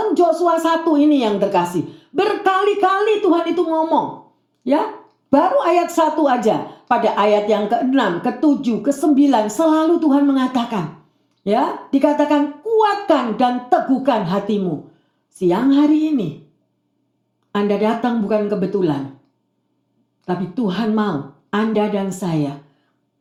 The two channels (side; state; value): both; identical; correlation 1.00